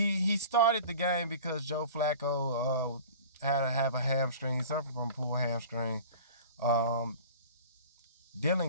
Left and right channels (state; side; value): inverted; both; correlation -0.41